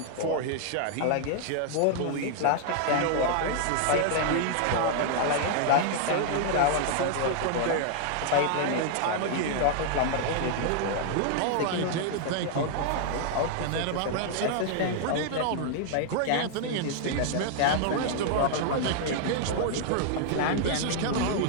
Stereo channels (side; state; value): both; different; correlation -0.01